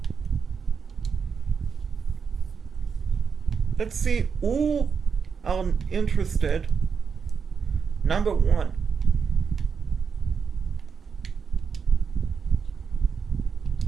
Let's see who are interested. Number one.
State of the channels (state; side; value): quieter; left; 6.2 dB